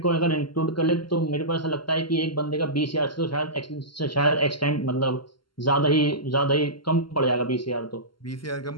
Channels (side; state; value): right; late; 0.72 ms